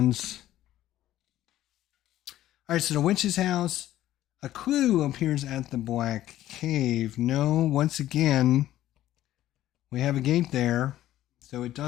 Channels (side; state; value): right; quieter; 13.7 dB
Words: All right, so the witch's house. A clue appears at the Black Cave. No, once again, we have a gate there. So it